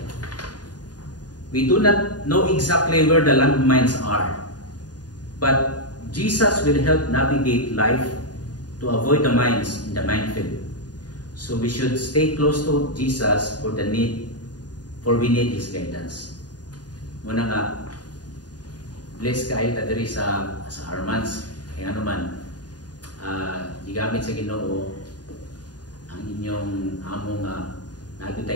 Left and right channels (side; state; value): right; late; 0.69 ms